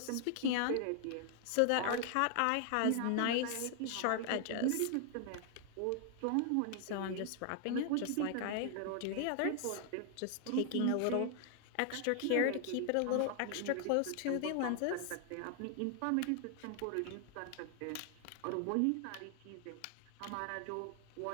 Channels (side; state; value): both; different; correlation 0.00